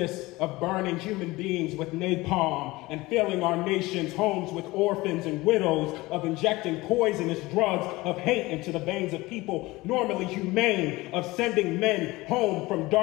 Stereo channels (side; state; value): right; quieter; 20.5 dB